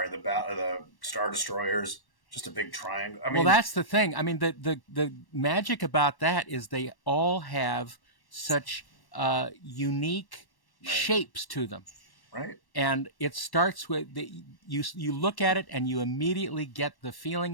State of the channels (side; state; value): right; late; 1.1 ms